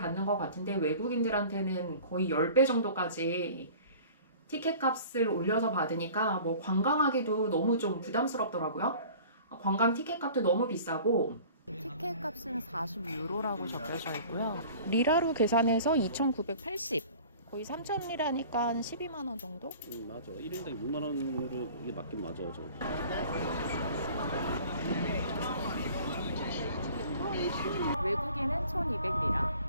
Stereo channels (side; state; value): both; inverted; correlation -0.45